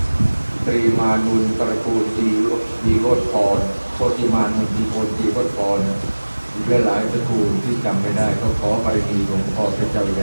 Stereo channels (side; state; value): both; inverted; correlation -1.00